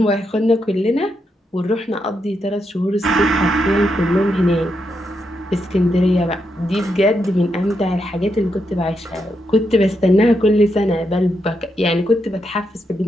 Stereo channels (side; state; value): both; normal; correlation 0.82